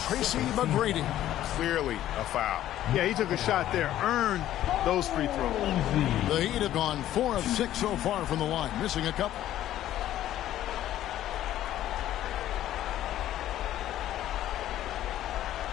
McGrady. Clearly a foul. Yeah, he took a shot there. Earned those free throws. The Heat have gone 4 of 6 so far from the line. Missing a couple.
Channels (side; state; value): right; quieter; 12.8 dB